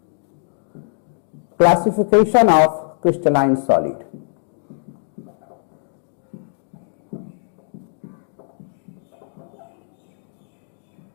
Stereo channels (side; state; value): right; silent; digital silence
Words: Classification of crystalline solid.